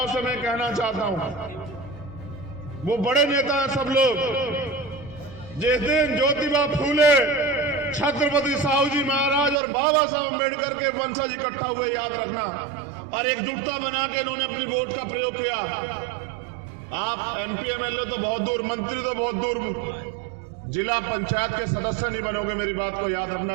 से मैं कहना चाहता हूं, वो बड़े नेता हैं सब लोग। जिस दिन ज्योतिबा फूले, छत्रपति साहू जी महाराज और बाबा साहब अम्बेडकर के वंशज इकट्ठा हुए, याद रखना, और एकजुटता बना के इन्होंने अपनी वोट का प्रयोग किया। आप एमपी एमएलए तो बहुत दूर, मंत्री तो बहुत दूर, जिला पंचायत के सदस्य नहीं बनोगे। मेरी बात को याद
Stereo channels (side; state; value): left; drops out; at 9.6 s